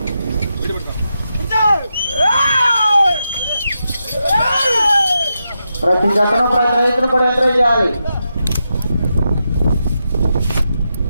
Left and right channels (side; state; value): both; inverted; correlation -0.86